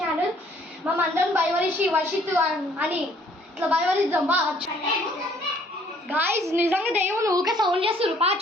మనందరం భయవరిషి వర్షిత్ అని ఇట్లా భయవరిద్దాం బా. గాయస్ నిజంగా దెయ్యం ఊకే సౌండ్ చేస్తారు. పా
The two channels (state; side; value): normal; both; correlation 0.61